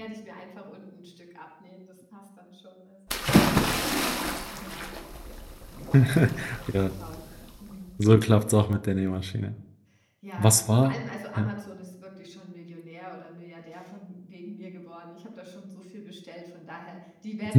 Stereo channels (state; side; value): identical; both; correlation 1.00